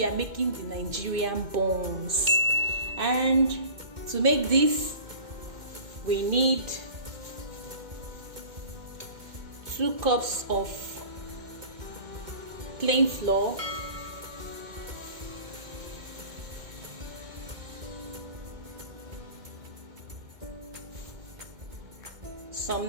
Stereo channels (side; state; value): left; late; 2.1 ms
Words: are making the Nigerian buns, and to make this we need 2 cups of plain flour, some